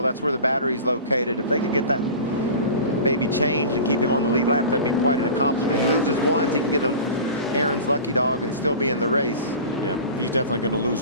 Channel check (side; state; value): both; inverted; correlation -0.36